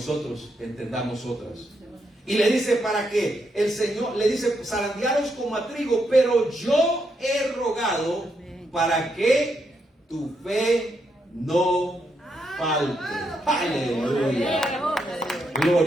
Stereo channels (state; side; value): normal; both; correlation 0.80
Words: entendamos otras. Y le dice para que el Señor, le dice: zarandearos como a trigo, pero yo he rogado para que tu fe no falte. Aleluya.